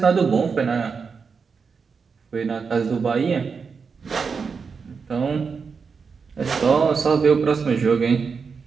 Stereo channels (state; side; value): quieter; left; 5.5 dB